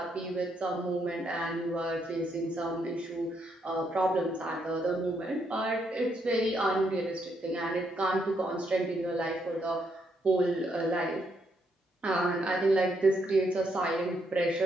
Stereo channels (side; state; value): both; normal; correlation 0.76